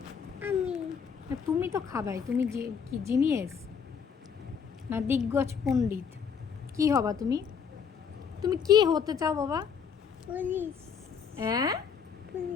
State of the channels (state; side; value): quieter; right; 6.7 dB